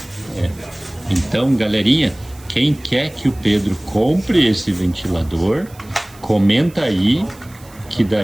Então, galerinha, quem quer que o Pedro compre esse ventilador, comenta aí, que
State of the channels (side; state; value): right; noise; hiss, 24 dB below the sound